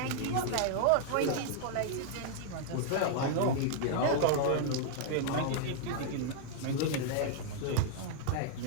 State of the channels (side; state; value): both; different; correlation 0.00